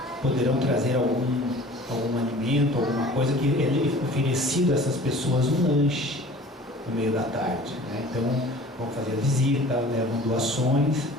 poderão trazer algum alimento, alguma coisa que é oferecido a essas pessoas, um lanche no meio da tarde, né? Então vão fazer a visita, levam doações,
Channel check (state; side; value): normal; both; correlation 0.45